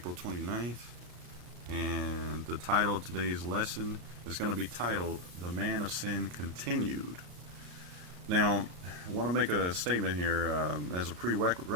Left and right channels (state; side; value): late; left; 34 ms